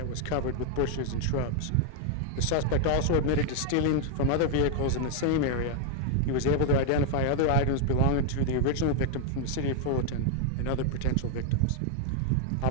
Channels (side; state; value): both; different; correlation 0.00